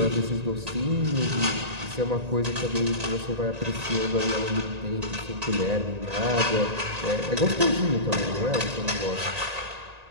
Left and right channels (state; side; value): late; left; 1.9 ms